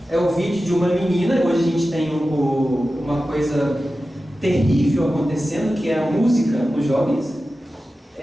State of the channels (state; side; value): normal; both; correlation 0.94